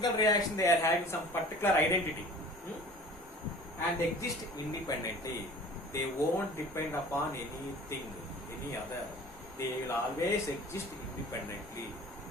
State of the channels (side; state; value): both; normal; correlation 0.44